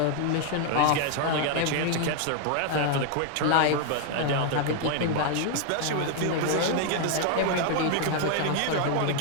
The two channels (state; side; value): different; both; correlation 0.00